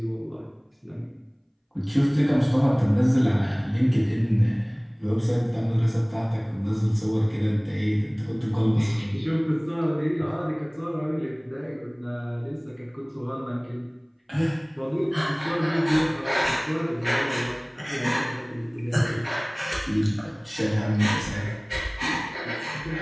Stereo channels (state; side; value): identical; both; correlation 1.00